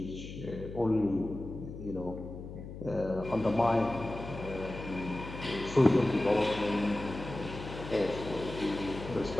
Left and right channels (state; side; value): noise; left; hum, 11 dB below the sound